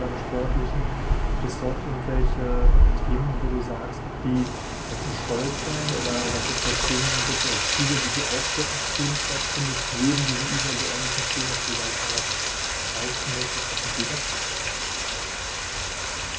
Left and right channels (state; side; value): identical; both; correlation 1.00